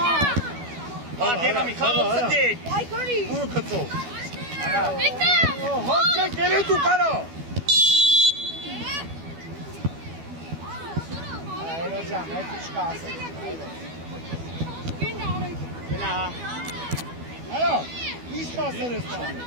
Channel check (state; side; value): late; left; 12 ms